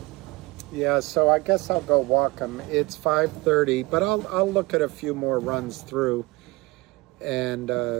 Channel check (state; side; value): quieter; left; 22.9 dB